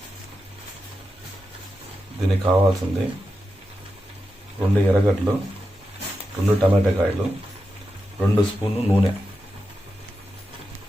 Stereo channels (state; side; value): normal; both; correlation 0.89